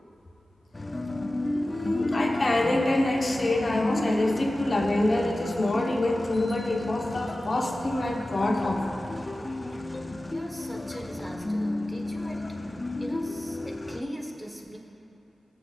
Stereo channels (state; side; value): normal; both; correlation 0.95